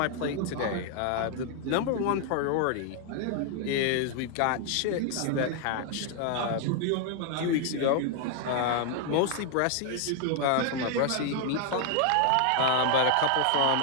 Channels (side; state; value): both; different; correlation 0.00